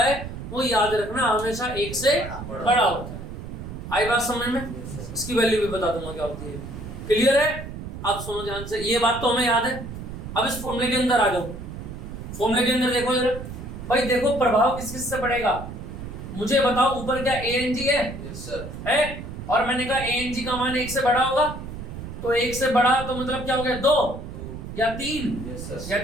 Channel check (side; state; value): right; noise; rumble, 9 dB below the sound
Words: है वो याद रखना हमेशा 1 से बड़ा होता है। आई बात समझ में? इसकी वैल्यू भी बता दूंगा क्या होती है। क्लियर है? अब सुनो ध्यान से, ये बात तो हमें याद है। अब इस फॉर्मूले के अंदर आ जाओ। फॉर्मूले के अंदर देखो जरा भाई, देखो प्रभाव किस किस से पड़ेगा मुझे बताओ। ऊपर क्या ANG है? यस सर है। और मैंने कहा ANG का मान 1 से बड़ा होगा, तो 1 से बड़ा तो मतलब क्या हो गया? 2 या 3 या